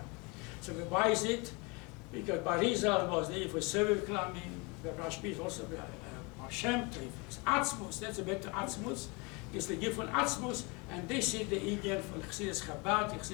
So why is it? Because Barizal was there for Seviv Klamim, the Rashbi is also Baal Shem Tov. It's Atzmuz, that's a better Atzmuz. It's the gift von Atzmuz, and they see the Indian from chassidus Chabad,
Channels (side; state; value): right; quieter; 28.3 dB